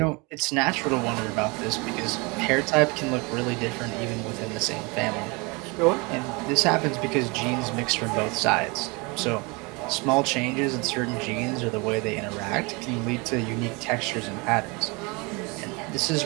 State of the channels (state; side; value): quieter; left; 28.2 dB